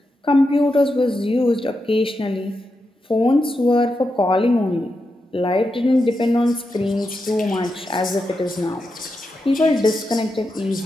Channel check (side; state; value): both; normal; correlation 0.87